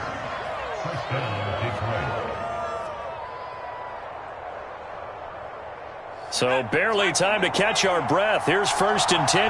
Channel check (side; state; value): both; identical; correlation 1.00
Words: So barely time to catch our breath. Here's 1st and